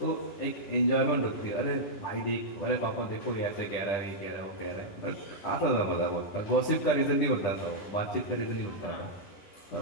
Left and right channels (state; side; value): late; right; 10 ms